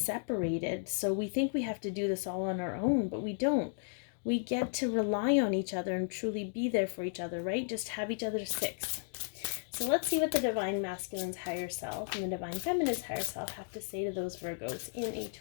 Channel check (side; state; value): right; silent; digital silence